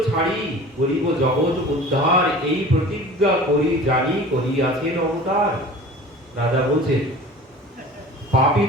ছাড়ি করিব জগৎ উদ্ধার, এই প্রতিজ্ঞা করি জানি করিয়াছেন অবতার। রাজা বলছেন পাপী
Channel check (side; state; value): both; normal; correlation 0.41